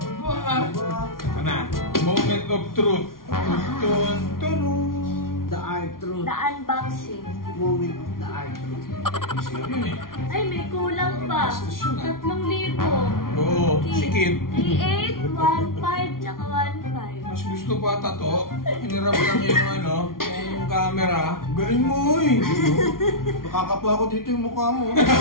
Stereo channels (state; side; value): late; right; 0.92 ms